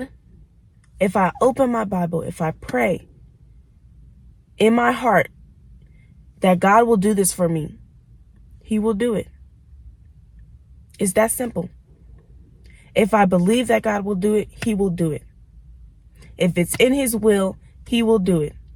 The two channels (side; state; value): both; identical; correlation 1.00